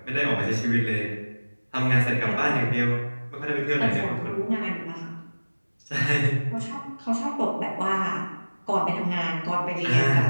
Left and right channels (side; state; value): both; inverted; correlation -1.00